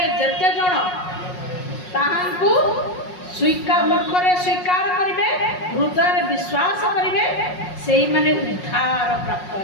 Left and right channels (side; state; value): right; late; 5.5 ms